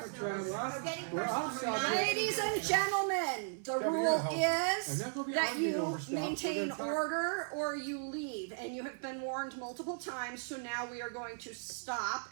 personal, what? we're getting We're personal. outside. We're not- Ladies and gentlemen, the Kevin, rule you're helping. I'm is not gonna be that arguing you over stuff. We're maintain gonna talk- order or you leave, and you have been warned multiple times, so now we are going to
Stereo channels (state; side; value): silent; left; 54 dB below the other